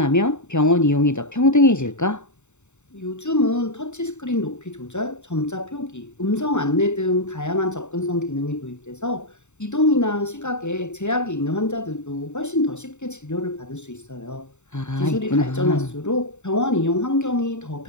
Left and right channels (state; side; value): late; right; 0.83 ms